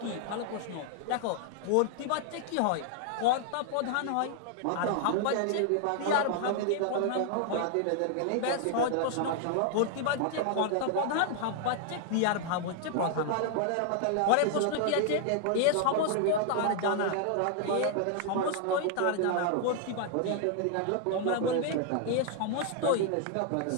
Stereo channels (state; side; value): different; both; correlation 0.00